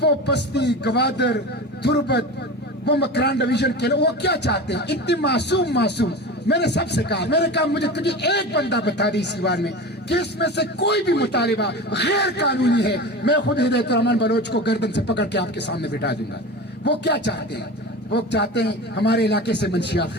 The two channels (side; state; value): both; normal; correlation 0.30